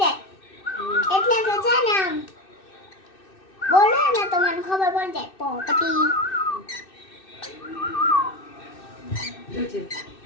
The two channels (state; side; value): late; right; 2.6 ms